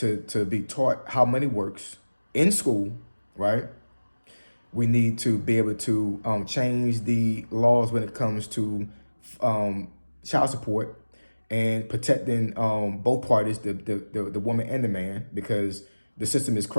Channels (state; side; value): inverted; both; correlation -1.00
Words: taught how money works in school, right? We need to be able to change the laws when it comes to child support and protecting both parties, the woman and the man, because the system is